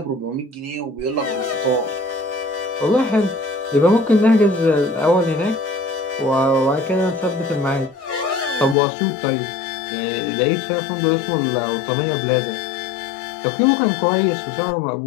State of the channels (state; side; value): drops out; right; at 8.8 s